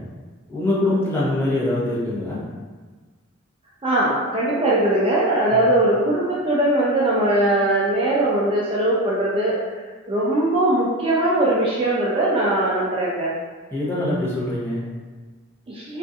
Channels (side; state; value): both; normal; correlation 0.24